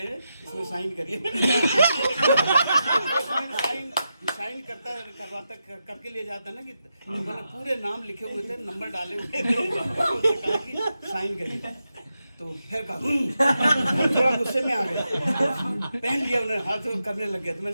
हैं, इसमें साइन करिए। साइन करवाता करके ले जाता ना कि मैंने पूरे नाम लिखे हुए थे, नंबर डाले हुए थे, उनसे कहा कि साइन करिए। तो फिर कहा थोड़ा गुस्से में आ गए, पहन लिया उन्हें, हाथ करने लग गया। तो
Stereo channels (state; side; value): inverted; both; correlation -0.87